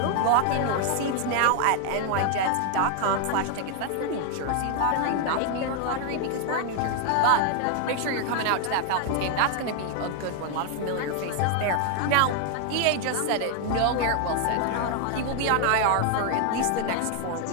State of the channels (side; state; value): both; different; correlation 0.00